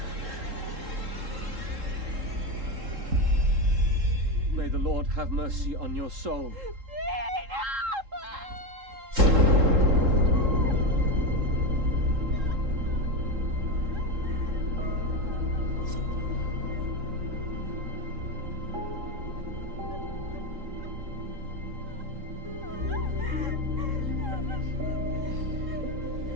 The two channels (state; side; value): late; left; 3.7 ms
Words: May the Lord have mercy on your soul.